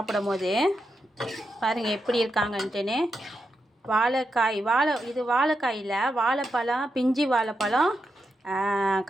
போது. பாருங்கள் எப்படி இருக்காங்கன்ட்டுன்னு. இது வாழைக்காயில் வாழைப்பழம், பிஞ்சி வாழைப்பழம்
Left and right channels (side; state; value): both; normal; correlation 0.86